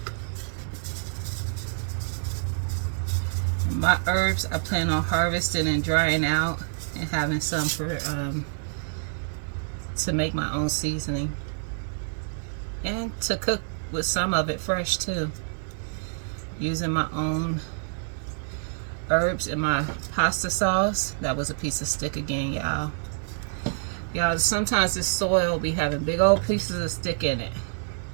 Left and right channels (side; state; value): left; silent; digital silence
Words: My herbs I plan on harvesting and drying out and having some for to make my own seasoning and to cook with some of it fresh too, using my own herbs in my pasta sauce. That was a piece of stick again, y'all. Sometimes this soil be having big old pieces of stick in it,